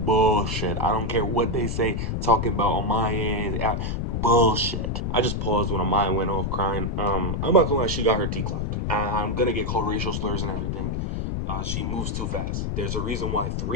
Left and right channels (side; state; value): left; noise; rumble, 1 dB below the sound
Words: I don't care what they say, talking about on my end, bullshit. I just paused when Amaya went off crying. I'm not gonna lie, she got her T clocked. I'm gonna get called racial slurs and everything. She moves too fast. There's a reason why